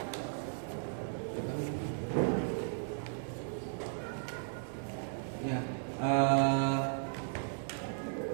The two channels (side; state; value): left; silent; digital silence